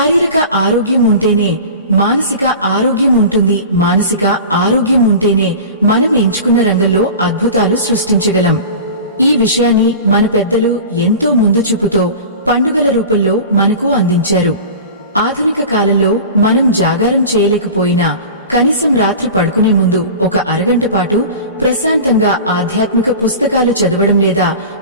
ఆరోగ్యం ఉంటేనే మానసిక ఆరోగ్యం ఉంటుంది. మానసిక ఆరోగ్యం ఉంటేనే మనం ఎంచుకున్న రంగంలో అద్భుతాలు సృష్టించగలం. ఈ విషయాన్ని మన పెద్దలు ఎంతో ముందు చూపుతో పండుగల రూపంలో మనకు అందించారు. ఆధునిక కాలంలో మనం జాగారం చేయలేకపోయినా కనీసం రాత్రి పడుకునే ముందు ఒక అరగంట పాటు ప్రశాంతంగా ఆధ్యాత్మిక పుస్తకాలు చదవడం లేదా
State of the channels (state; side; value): inverted; both; correlation -0.35